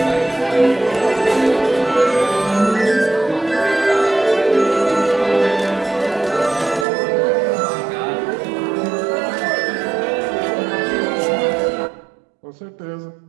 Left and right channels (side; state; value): left; drops out; at 6.9 s